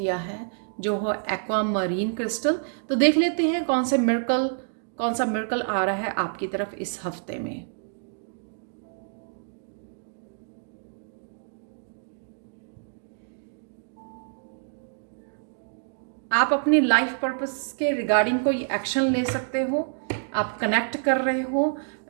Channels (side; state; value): left; silent; digital silence